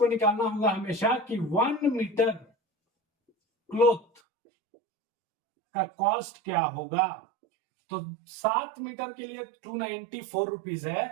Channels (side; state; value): left; drops out; at 4.2 s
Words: निकालना होगा हमेशा कि 1 मीटर क्लॉथ का कॉस्ट क्या होगा। तो 7 मीटर के लिए 294 रुपीज है,